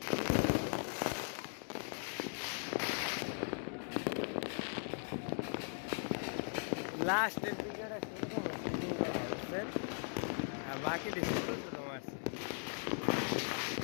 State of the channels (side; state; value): right; silent; 52 dB below the other